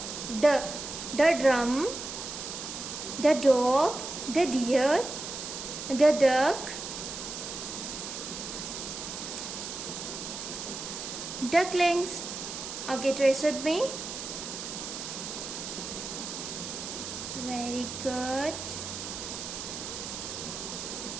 drum, the dog, the deer, the duck, ducklings. Okay, trace with me. Very good.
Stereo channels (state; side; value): noise; right; hiss, 7 dB below the sound